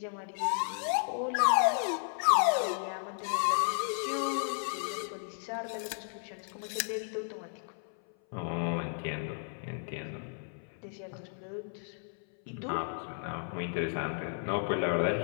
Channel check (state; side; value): silent; right; 55 dB below the other